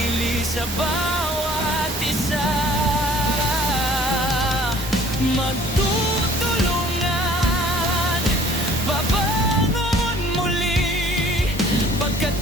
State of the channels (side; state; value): both; normal; correlation 0.53